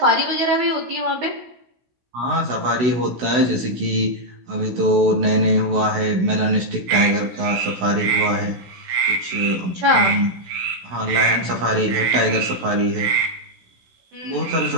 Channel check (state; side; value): late; left; 16 ms